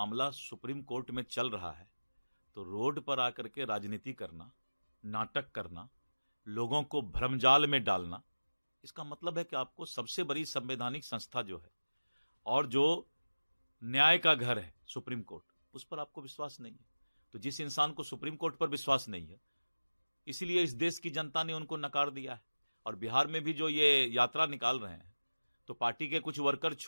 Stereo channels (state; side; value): inverted; both; correlation -1.00